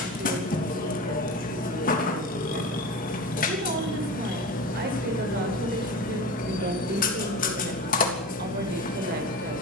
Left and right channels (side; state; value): both; normal; correlation 0.29